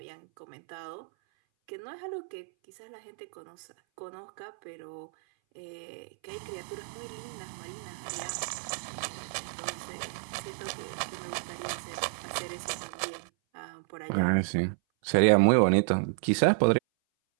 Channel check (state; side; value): silent; left; 57 dB below the other